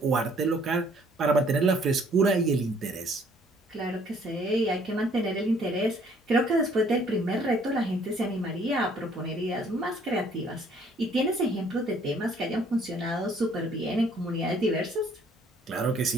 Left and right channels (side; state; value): both; normal; correlation 0.61